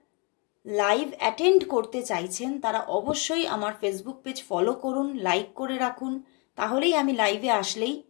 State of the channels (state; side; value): quieter; right; 32.5 dB